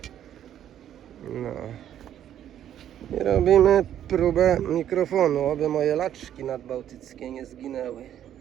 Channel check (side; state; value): left; quieter; 10.7 dB